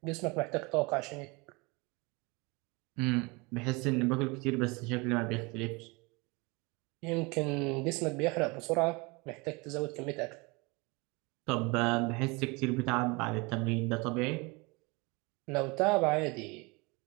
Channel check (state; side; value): quieter; left; 27.0 dB